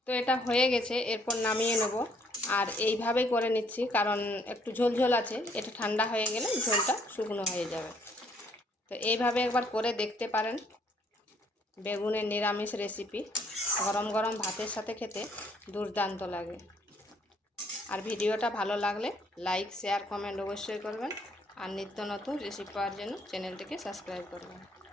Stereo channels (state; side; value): normal; both; correlation 0.66